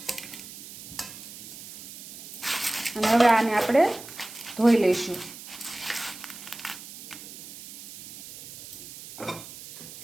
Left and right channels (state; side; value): noise; right; hiss, 14 dB below the sound